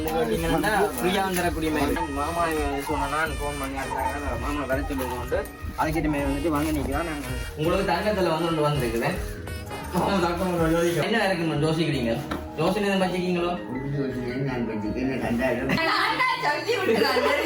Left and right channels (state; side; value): identical; both; correlation 1.00